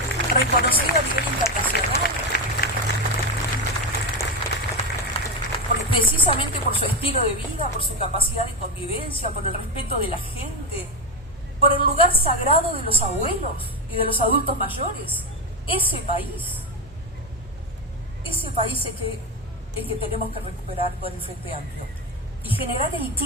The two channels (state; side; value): normal; both; correlation 0.13